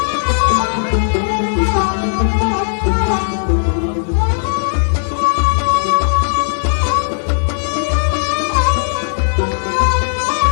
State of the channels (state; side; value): silent; right; 63 dB below the other